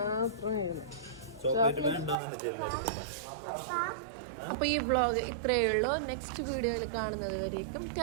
വേങ്ങണ ചോക്ലേറ്റ് വേണ്ടോന്ന് ചെല്ലുന്നത്. അപ്പൊ ഈ വ്ളോഗ് ഇത്രയേ ഉള്ളൂ. നെക്സ്റ്റ് വീഡിയോയിൽ കാണുന്നത് വരേക്കും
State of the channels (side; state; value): left; drops out; at 2.2 s